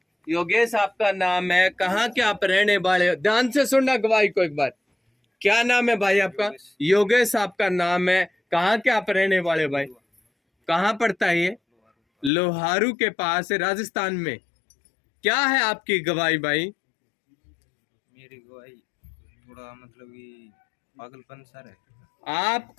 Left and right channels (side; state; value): right; drops out; at 12.3 s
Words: योगेश आपका नाम है, कहाँ के आप रहने वाले हो? ध्यान से सुनना गवाही को एक बार। क्या नाम है भाई आपका? योगेश आपका नाम है, कहाँ के आप रहने वाले भाई? कहाँ पड़ता है ये? लोहारू के पास है, राजस्थान में। क्या है आपकी गवाही भाई? मेरी गवाही थोड़ा मतलब कि पागलपन सा है।